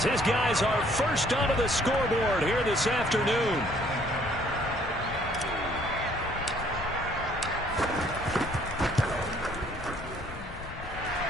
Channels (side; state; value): left; noise; rumble, 13 dB below the sound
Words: his guys are first onto the scoreboard here this afternoon.